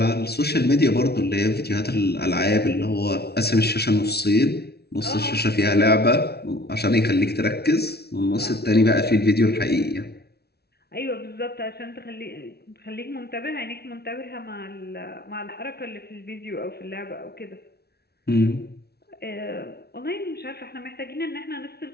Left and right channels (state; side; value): late; right; 0.47 ms